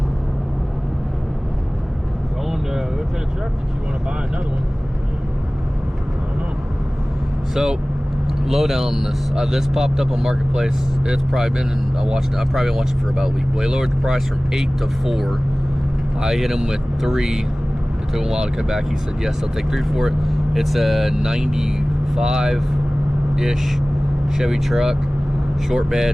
Going to look at a truck that you want to buy another one. I don't know. So, lowdown on this. This popped up on Marketplace. It's probably been, I've probably been watching for about a week. Well, he lowered the price from 8 to 4. I hit him with 3. It took him a while to come back. He said, yes, I'll take 3 for it. It's a 95-ish Chevy truck. Short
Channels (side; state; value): both; normal; correlation 0.98